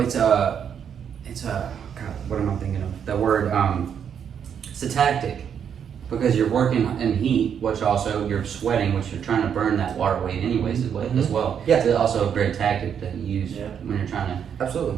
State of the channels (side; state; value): left; quieter; 8.0 dB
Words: it's a God. What am I thinking of? The word. It's a tactic because you're working in heat, which also you're sweating, which you're trying to burn that water weight anyways as well. Yeah. It's also a great tactic that you use Yeah. when you're trying to. Absolutely.